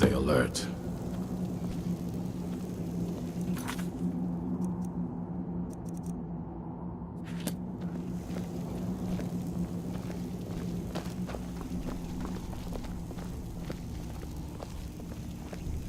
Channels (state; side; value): identical; both; correlation 1.00